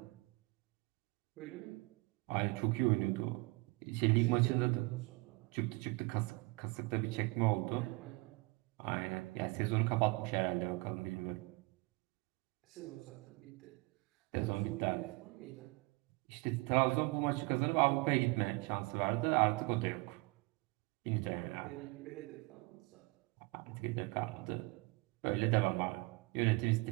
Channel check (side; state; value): left; quieter; 26.1 dB